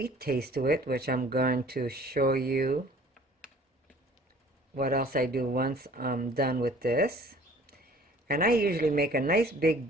taste to it, which I'm going to show you what else I do once I'm done with this. And I usually make a nice big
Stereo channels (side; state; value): both; normal; correlation 0.51